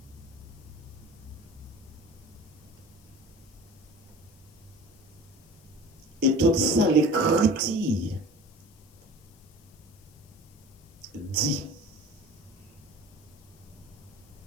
Et tout ça, l'Écriture dit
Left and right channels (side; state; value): left; noise; hiss, 27 dB below the sound